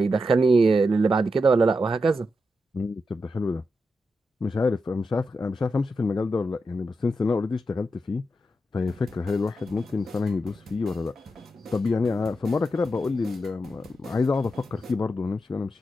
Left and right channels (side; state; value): both; normal; correlation 0.87